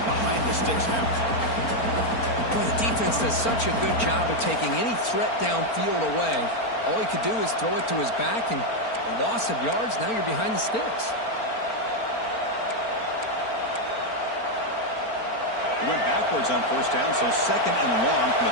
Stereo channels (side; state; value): right; late; 4.4 ms